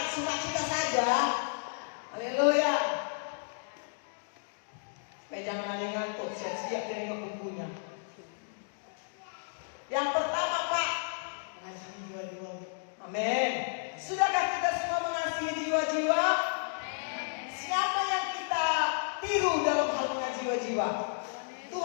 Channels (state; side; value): silent; right; digital silence